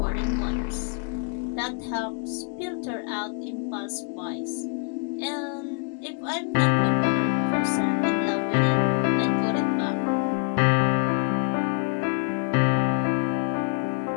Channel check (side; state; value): right; quieter; 39.0 dB